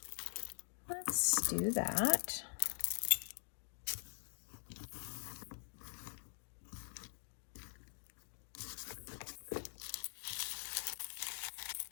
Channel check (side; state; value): right; silent; digital silence